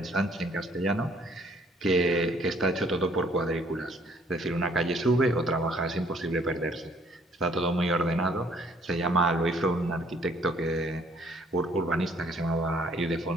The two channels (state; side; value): normal; both; correlation 0.62